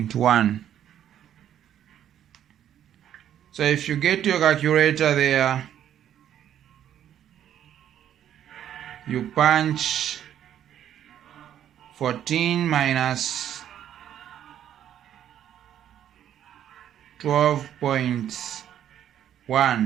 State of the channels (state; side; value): quieter; left; 10.5 dB